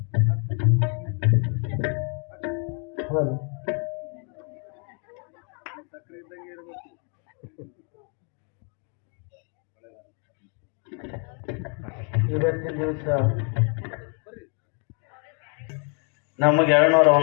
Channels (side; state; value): right; quieter; 38.9 dB